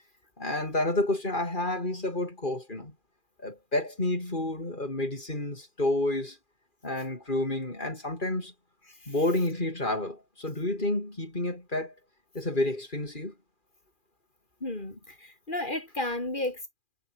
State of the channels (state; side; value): late; right; 2.4 ms